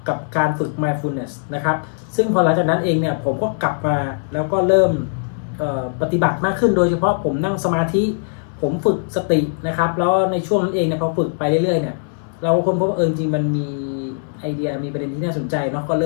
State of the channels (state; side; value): silent; right; 66 dB below the other